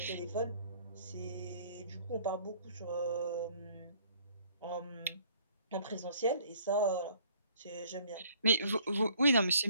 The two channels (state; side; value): inverted; both; correlation -0.60